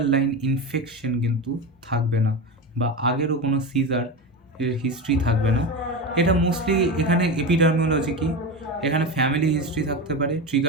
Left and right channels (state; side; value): normal; both; correlation 0.21